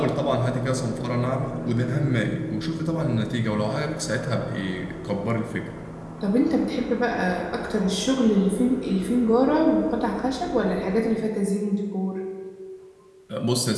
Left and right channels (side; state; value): both; identical; correlation 1.00